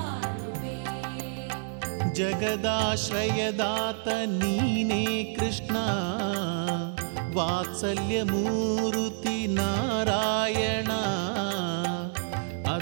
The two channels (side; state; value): left; silent; 59 dB below the other